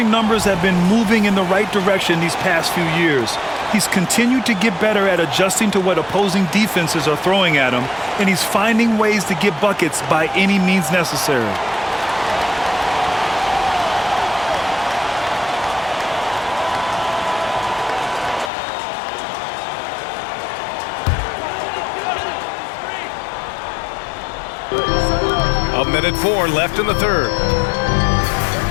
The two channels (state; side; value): drops out; right; at 18.5 s